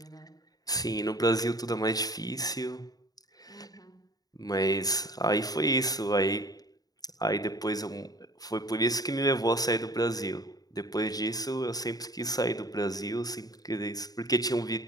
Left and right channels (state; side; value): late; right; 0.18 ms